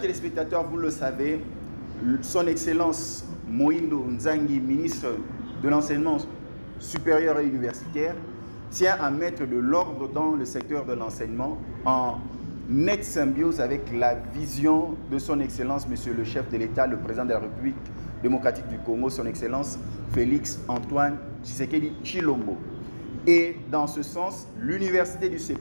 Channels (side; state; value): both; inverted; correlation -1.00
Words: téléspectateurs, vous le savez, son Excellence Moïndo Nzangi, ministre de l'enseignement supérieur et universitaire, tient à mettre de l'ordre dans le secteur de l'enseignement en nette symbiose avec la vision de son Excellence, Monsieur le chef de l'État, le président de la République démocratique du Congo, son Excellence Félix Antoine Tshisekedi Tshilombo. Et dans ce sens, l'université du